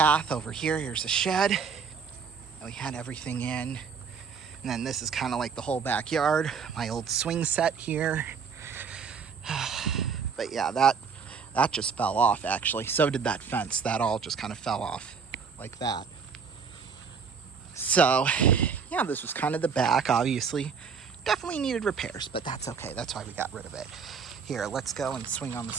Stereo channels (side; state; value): left; quieter; 6.0 dB